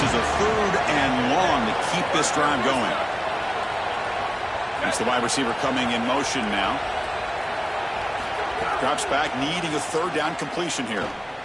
a 3rd and long to keep this drive going. That's the wide receiver coming in motion now. Drops back, needing a 3rd down completion here.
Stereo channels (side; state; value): both; identical; correlation 1.00